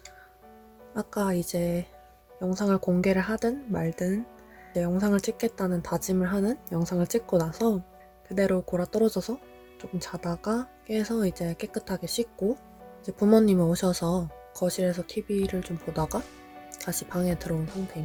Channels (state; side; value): identical; both; correlation 1.00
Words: 아까 이제 영상을 공개를 하든 말든 이제 영상을 찍겠다는 다짐을 하는 영상을 찍고 나서 그대로 골아 떨어져서 조금 자다가 깨서 이제 깨끗하게 씻고 이제 부모님이 오셔서 거실에서 TV를 좀 보다가 다시 방에 들어온